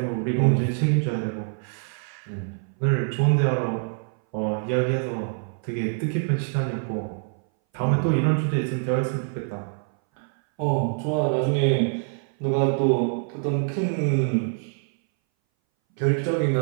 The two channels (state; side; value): silent; left; 60 dB below the other